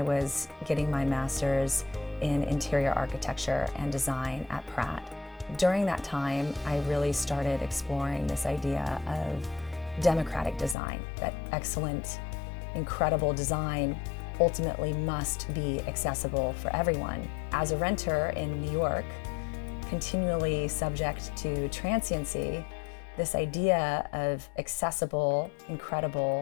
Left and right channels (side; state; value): right; drops out; at 10.8 s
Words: was getting my master's in interior architecture and design at Pratt. During that time, I really started exploring this idea of democratic design, that excellent, incredible design ultimately must be accessible for everyone. As a renter in New York, continually subject to transiency, this idea of accessible,